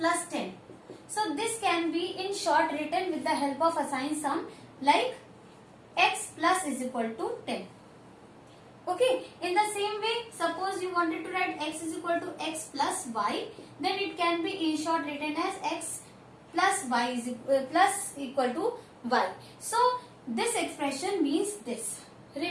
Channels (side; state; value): both; identical; correlation 1.00